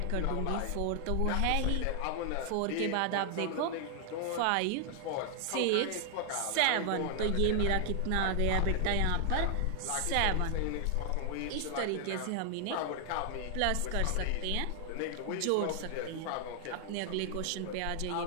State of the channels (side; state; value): both; different; correlation 0.00